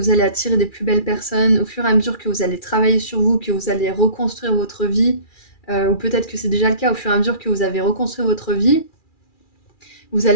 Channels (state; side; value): late; right; 2.4 ms